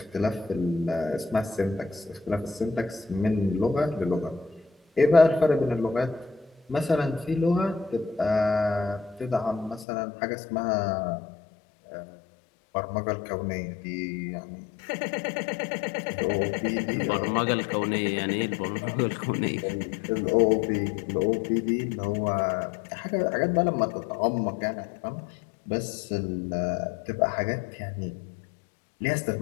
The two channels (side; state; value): right; drops out; at 9.9 s